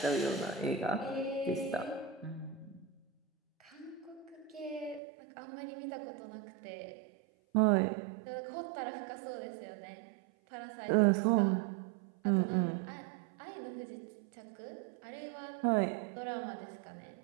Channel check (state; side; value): drops out; left; at 5.0 s